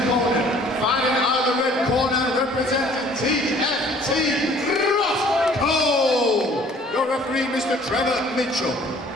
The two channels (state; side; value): normal; both; correlation 0.55